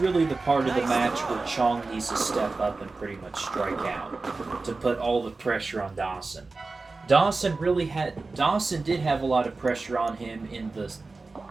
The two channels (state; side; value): quieter; left; 3.7 dB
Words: the part of the match where Chong needs to step up and pretty much strike out to put all the pressure on Dawson. Dawson did have a lot of pressure on him in the